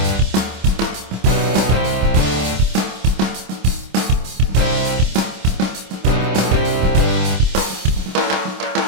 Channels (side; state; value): left; late; 26 ms